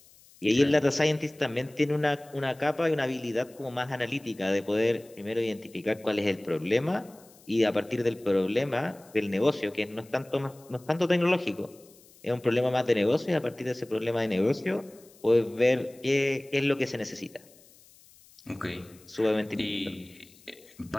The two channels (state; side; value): noise; left; hiss, 26 dB below the sound